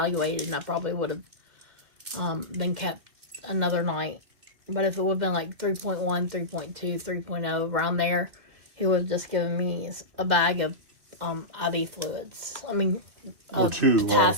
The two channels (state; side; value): late; left; 2.4 ms